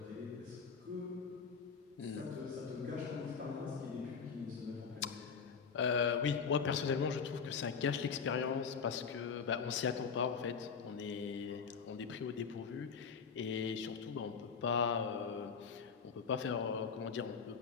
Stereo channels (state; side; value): quieter; right; 6.0 dB